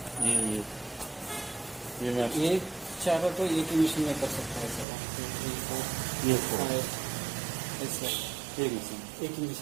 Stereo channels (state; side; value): drops out; left; at 4.9 s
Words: ये चारों तो एक ही मशीन में कर सकता है सर. ये एक मशीन एक ही